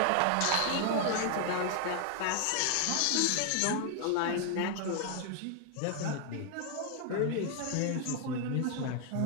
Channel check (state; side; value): different; both; correlation 0.00